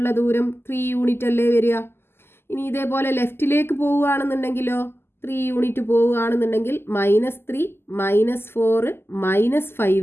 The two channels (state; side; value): late; right; 0.12 ms